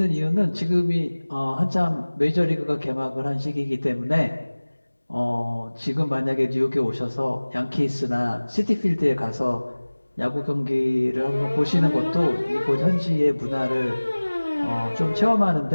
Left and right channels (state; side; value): inverted; both; correlation -1.00